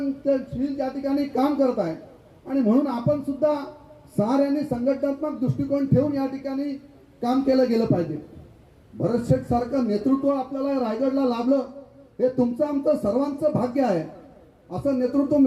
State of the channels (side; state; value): both; identical; correlation 1.00